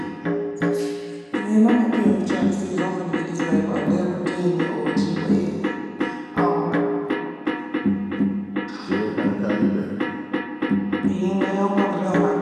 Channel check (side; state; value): both; identical; correlation 1.00